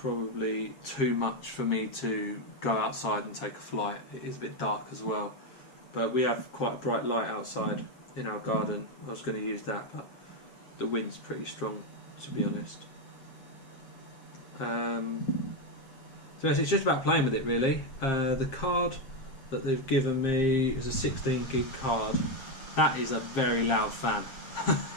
too much for me to go outside and take a flight. It is a bit dark as well, but we have quite a bright light outside in our garden. I was going to use that, but the wind's pretty strong, to be honest. So it's just about playing with it, really. The card that they've given me is a 16 gig card. That is a very loud fan.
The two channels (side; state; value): right; late; 7.5 ms